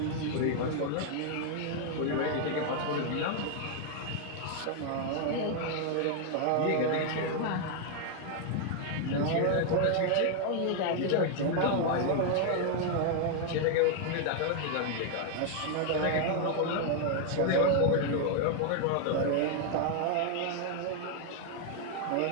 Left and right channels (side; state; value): both; different; correlation 0.00